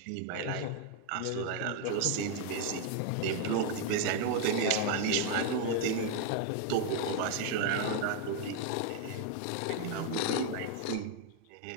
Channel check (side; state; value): both; different; correlation 0.00